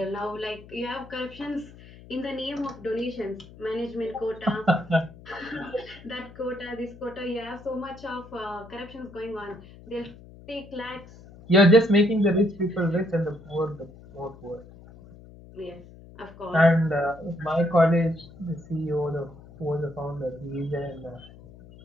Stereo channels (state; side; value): noise; left; hum, 20 dB below the sound